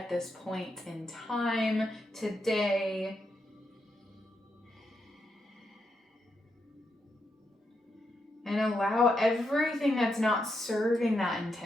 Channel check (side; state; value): both; normal; correlation 0.83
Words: this point in time, today. And allow everything that's not serving that